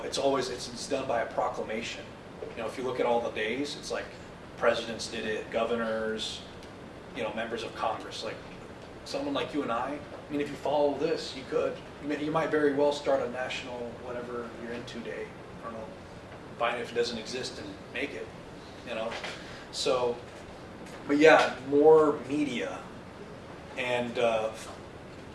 it's done by a proclamation. You know, if you look at all the days, it's like presidents did it, governors, you know, members of Congress. Like someone like you and I mean, if you follow this, you could. You might very well start a national whatever you're into day. I don't know. Find it if it doesn't exist and make it. You know. So, but yeah, more media, and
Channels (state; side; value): identical; both; correlation 1.00